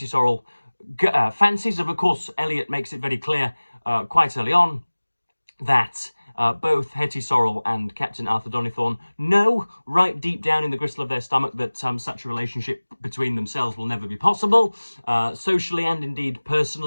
Sorrel fancies. Of course, Eliot makes it very clear quite early on that both Hetty Sorrel and Captain Arthur Donnithorne know right deep down in the gristle of their stomach that such a relationship between themselves will never be possible. Socially and indeed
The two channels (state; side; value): inverted; both; correlation -1.00